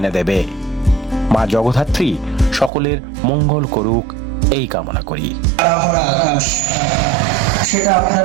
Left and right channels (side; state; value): left; drops out; at 2.7 s